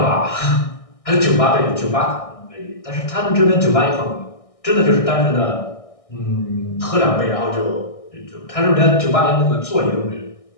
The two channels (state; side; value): late; right; 1.6 ms